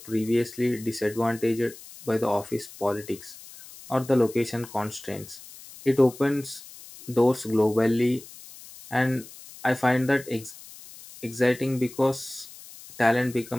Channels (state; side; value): noise; left; hiss, 18 dB below the sound